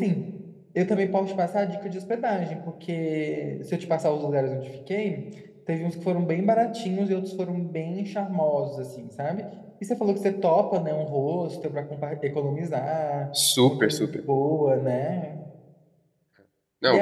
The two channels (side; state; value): both; identical; correlation 1.00